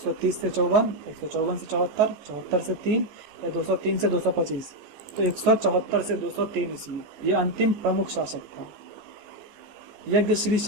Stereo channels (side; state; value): left; late; 14 ms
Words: से 54, 154 से 74, 74 से 3 या 203 से 225? तो 174 से 203 ईस्वी ये अंतिम प्रमुख शासक था। यज्ञश्री